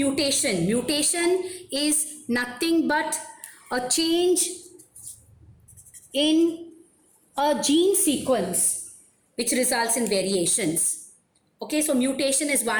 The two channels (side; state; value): both; identical; correlation 1.00